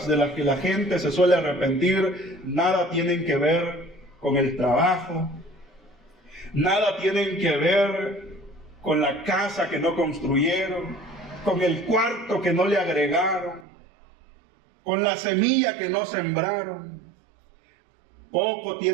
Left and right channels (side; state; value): left; drops out; at 13.7 s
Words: de las que la gente se suele arrepentir, nada tienen que ver con el trabajo, nada tienen que ver con la casa que no construyeron, con el cuarto que no le agregaron, con la semilla que no sembraron. Poco